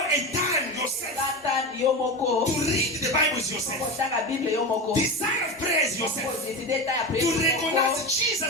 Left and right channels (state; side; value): normal; both; correlation 0.22